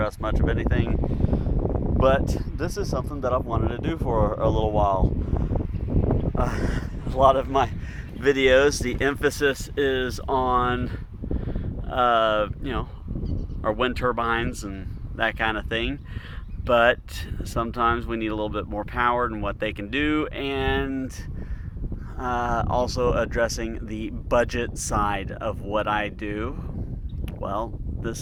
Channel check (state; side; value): identical; both; correlation 1.00